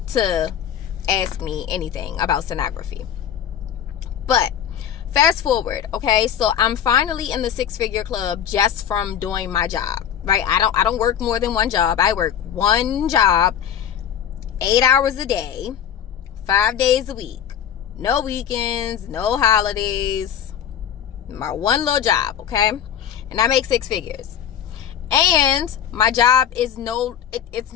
to ask me anything about sonography. But fast forward, okay? So I'm finally in the 6-figure club just from doing my job, right? I don't work more than one job. I work one job, 8 hours a day, 5 days a week. No weekends, no holidays. My one little job, okay? And I make 6 figures. And my job is it's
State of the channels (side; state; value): right; quieter; 9.2 dB